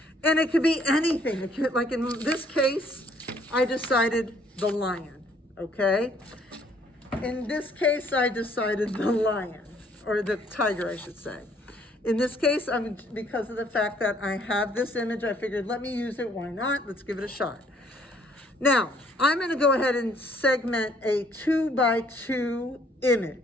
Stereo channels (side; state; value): both; normal; correlation 0.63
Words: And it could be anything. It could, like in this case, I decided the lion, okay? In this case, I decided the lion. Or the tiger, I should say. In this case, because of the fact that I have this image, I figured, let me use it. Why not? Let's give it a shot. Now, I'm going to go ahead and segment a 2x2